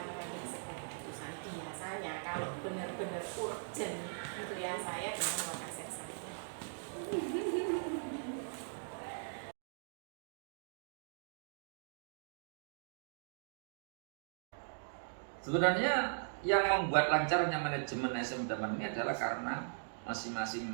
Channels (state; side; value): silent; left; digital silence